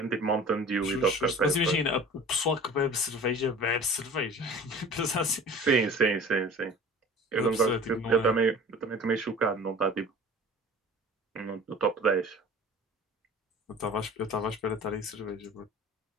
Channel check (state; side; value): normal; both; correlation 0.42